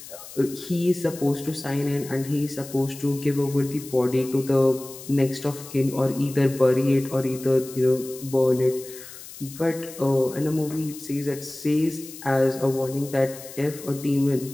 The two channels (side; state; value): left; noise; hiss, 15 dB below the sound